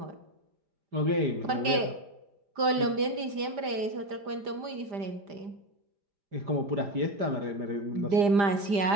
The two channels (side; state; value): left; late; 5.0 ms